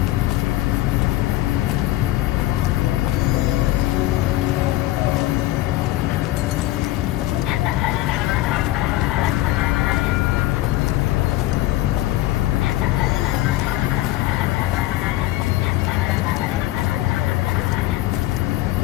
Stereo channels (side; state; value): right; quieter; 16.3 dB